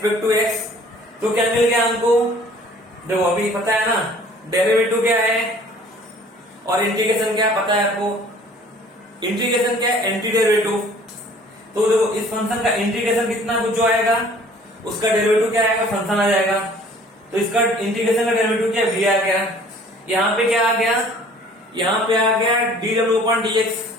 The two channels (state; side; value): normal; both; correlation 0.52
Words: टू x, तो क्या मिल गया हमको, देखो अभी पता है ना डेरिवेटिव क्या है और इंटीग्रेशन क्या पता है आपको, इंटीग्रेशन क्या है, एंटी डेरिवेटिव। तो देखो इस फंक्शन का इंटीग्रेशन कितना कुछ जो आएगा उसका डेरिवेटिव क्या आएगा, फंक्शन आ जाएगा। तो इसका इंटीग्रेशन का डेरिवेटिव क्या v आ गया, यहाँ पे क्या आ गया, यहाँ पे आ गया dw अपॉन dx।